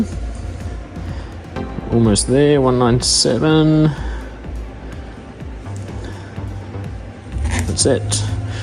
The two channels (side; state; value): both; identical; correlation 1.00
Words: Almost there, 197. That's it.